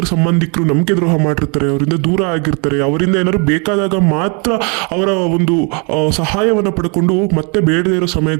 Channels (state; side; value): quieter; left; 34.8 dB